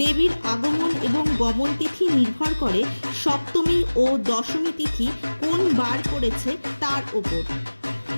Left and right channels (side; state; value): both; inverted; correlation -1.00